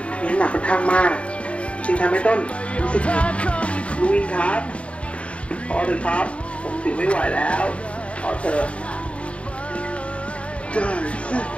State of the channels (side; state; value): right; late; 0.062 ms